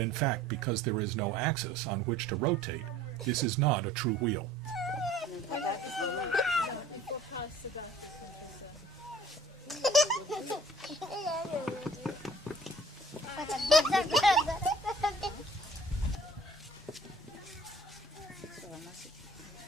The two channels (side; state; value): both; normal; correlation 0.51